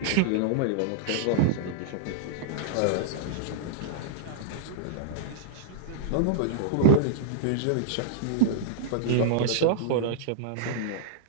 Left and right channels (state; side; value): different; both; correlation -0.01